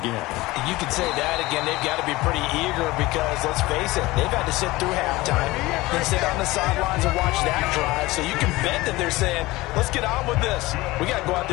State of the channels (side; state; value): right; quieter; 19.9 dB